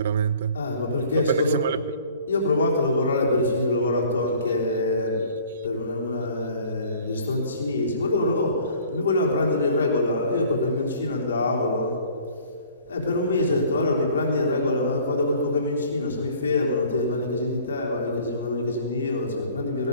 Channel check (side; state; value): both; inverted; correlation -0.52